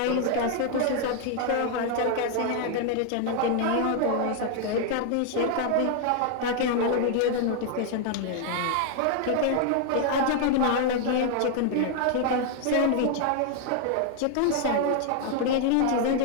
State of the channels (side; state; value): both; different; correlation 0.00